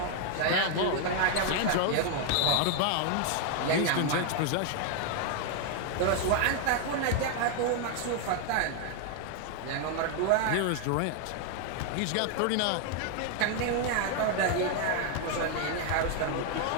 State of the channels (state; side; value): different; both; correlation 0.00